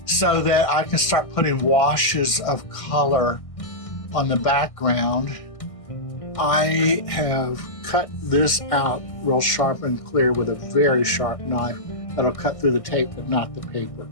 so that I can start putting washes of color on the background. I have cut this out real sharp and clear with a very sharp knife that'll cut through the tape but not the paper,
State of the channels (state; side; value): late; right; 1.6 ms